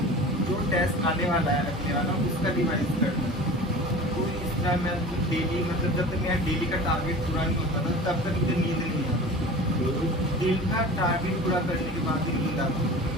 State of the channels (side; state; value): both; normal; correlation 0.37